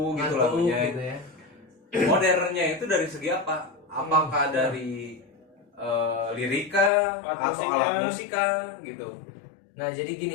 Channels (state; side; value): drops out; right; at 6.9 s